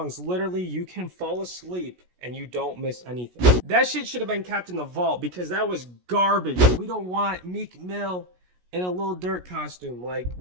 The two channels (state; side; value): late; left; 17 ms